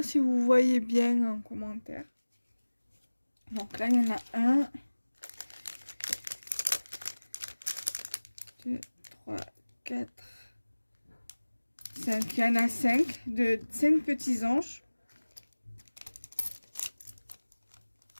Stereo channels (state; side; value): inverted; both; correlation -1.00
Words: si vous voyez bien en commentaire. Donc là, il y en a un, 2, 3, 4, 5. Il y en a 5, de 5 petits anges.